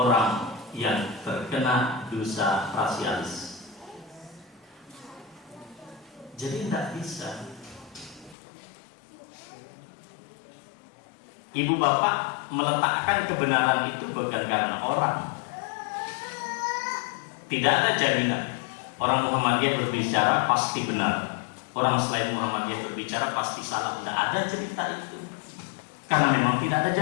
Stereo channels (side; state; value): right; drops out; at 8.3 s